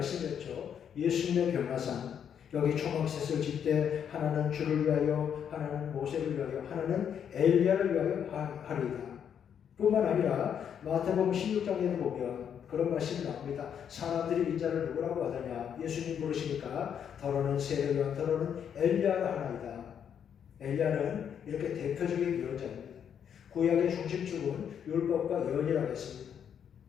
예수님의 변화산, 여기 초막셋을 짓되 하나는 주를 위하여, 하나는 모세를 위하여, 하나는 엘리야를 위하여 하리이다. 뿐만 아니라 마태복음 16장에도 보면 그런 말씀이 나옵니다. 사람들이 인자를 누구라고 하더냐? 예수님 부르시니까 더러는 세례요한, 더러는 엘리야라 하나이다. 엘리야는 이렇게 대표적인 예언자입니다. 구약의 중심축은 율법과 예언이라고 했습니다.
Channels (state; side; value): quieter; right; 8.3 dB